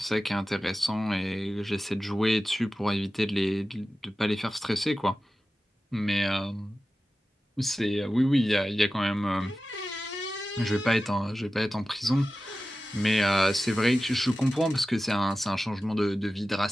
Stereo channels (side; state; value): both; normal; correlation 0.95